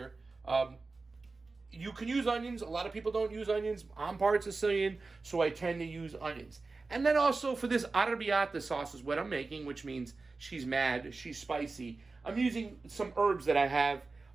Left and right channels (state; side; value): quieter; left; 3.8 dB